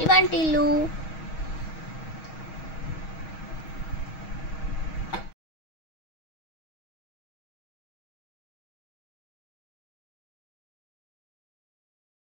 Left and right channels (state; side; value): late; right; 6.3 ms